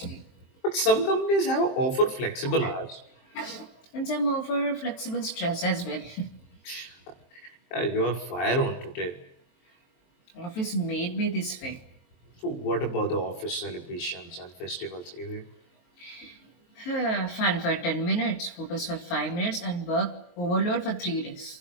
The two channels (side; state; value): right; late; 23 ms